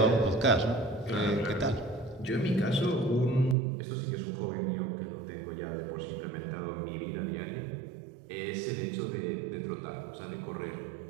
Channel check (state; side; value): drops out; left; at 3.6 s